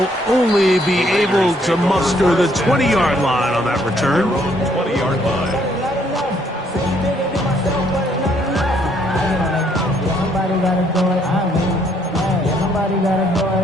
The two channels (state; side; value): normal; both; correlation 0.68